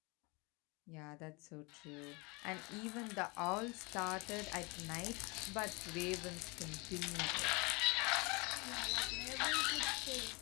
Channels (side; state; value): right; quieter; 27.7 dB